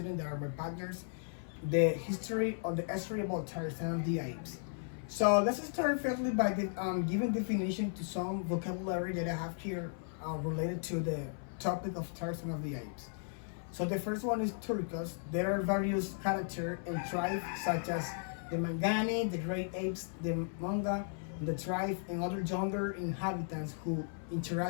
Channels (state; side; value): silent; right; 54 dB below the other